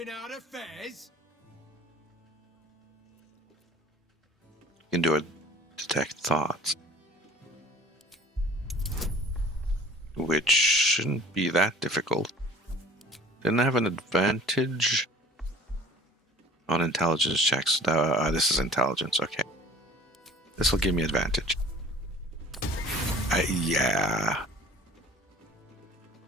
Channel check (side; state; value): both; normal; correlation 0.48